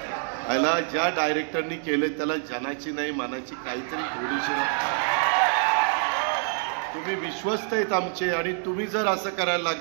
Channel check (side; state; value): left; silent; 57 dB below the other